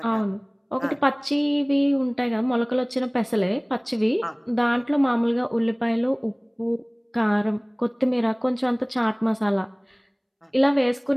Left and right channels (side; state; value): both; identical; correlation 1.00